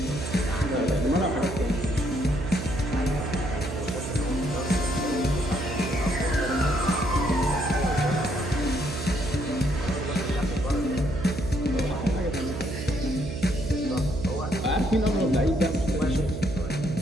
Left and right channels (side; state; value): right; noise; hum, 6 dB below the sound